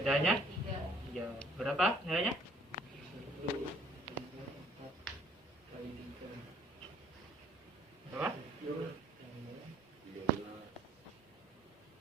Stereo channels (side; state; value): both; normal; correlation 0.59